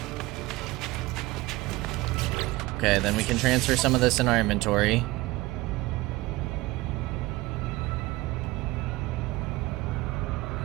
Okay, then we can transfer some of this in our inventory.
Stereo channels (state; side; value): quieter; left; 20.0 dB